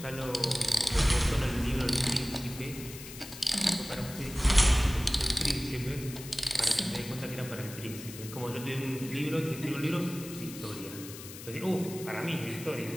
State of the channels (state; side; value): noise; left; hiss, 13 dB below the sound